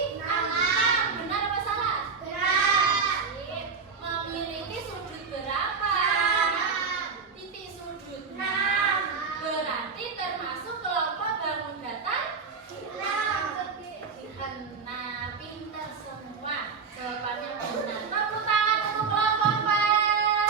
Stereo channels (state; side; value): quieter; left; 5.3 dB